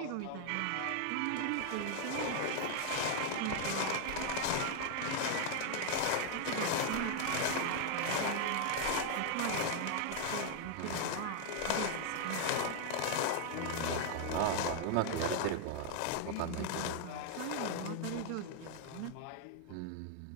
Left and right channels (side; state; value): both; different; correlation 0.00